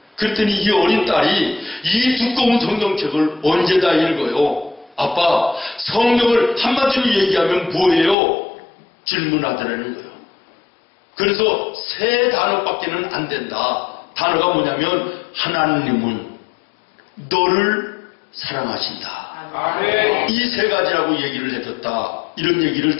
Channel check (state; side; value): drops out; right; at 8.2 s